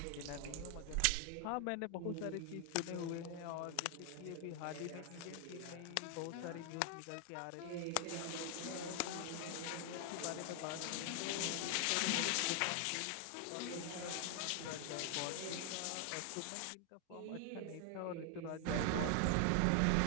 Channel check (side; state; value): both; different; correlation 0.00